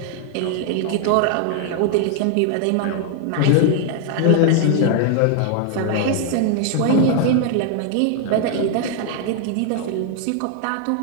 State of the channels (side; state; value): both; different; correlation 0.00